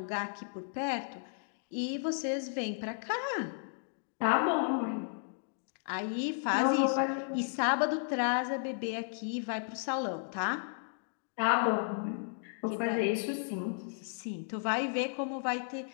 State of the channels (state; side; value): silent; right; digital silence